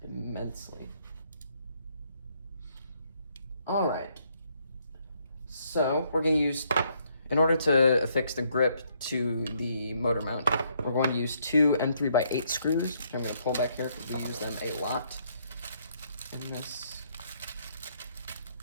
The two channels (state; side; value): inverted; both; correlation -0.71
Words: immensely. All right, so we're going to use, in order to affix the grip to the motor mount, we're going to use two M3x8 screws, which I'm going to pull back here because we use them a lot in this.